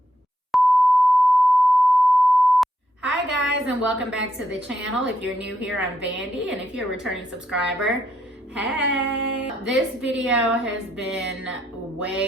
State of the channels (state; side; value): normal; both; correlation 0.78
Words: hi guys, and welcome back to the channel. If you're new here, I'm Vandy, and if you're a returning subscriber, hey. This video has been